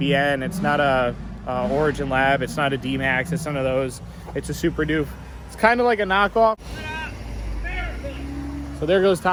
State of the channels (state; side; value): identical; both; correlation 1.00